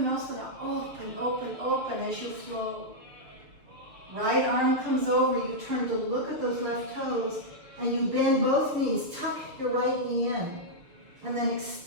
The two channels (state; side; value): late; left; 6.6 ms